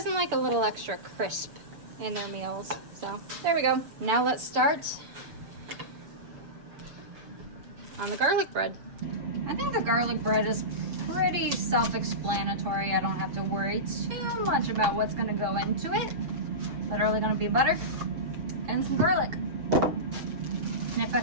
like a little extra crisp in their meals? So there we go. Now let's start on the garlic bread. I think the garlic bread is pretty self-explanatory. I don't have to worry too much about what's gonna go into it. Literally gonna be butter and some garlic. And if I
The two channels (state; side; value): late; left; 7.0 ms